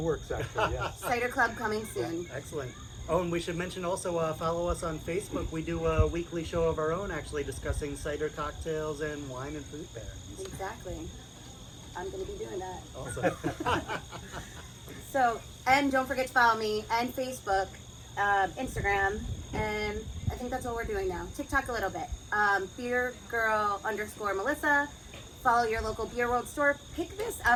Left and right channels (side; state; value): both; identical; correlation 1.00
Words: works, actually, yes. Cider club coming soon. Excellent. Oh, and we should mention also follow us on Facebook. We do a weekly show of our own, actually discussing cider cocktails and wine and fruit pairings. Exactly. I'm gonna be doing that. Awesome. So, and don't forget to follow me and Facebook, Instagram, and I think that's all we're doing now. TikTok a little bit. BeerGirl_Melissa. Follow your local Beer World store. Pick this